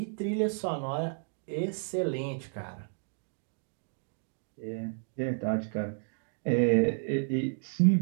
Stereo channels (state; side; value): silent; left; digital silence